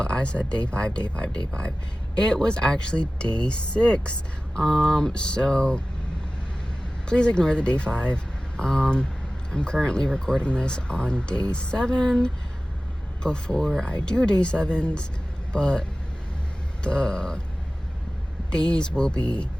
I said day 5, day 5, day 5. It was actually day 6. So please ignore the day 5. I'm currently recording this on day 7 before I do day 7s, but the days will be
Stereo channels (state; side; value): normal; both; correlation 0.96